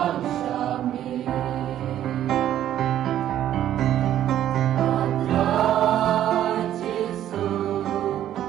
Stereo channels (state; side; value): quieter; left; 11.6 dB